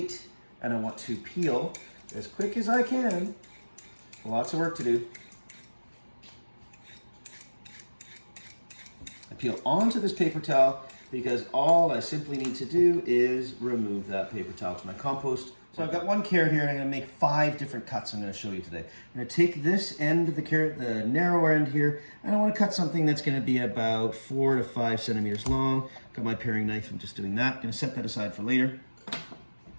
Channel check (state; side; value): inverted; both; correlation -1.00